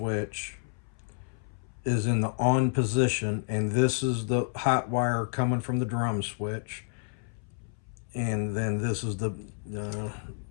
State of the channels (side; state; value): right; silent; 58 dB below the other